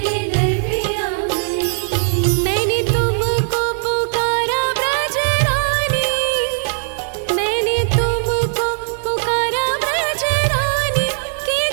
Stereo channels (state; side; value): silent; left; 67 dB below the other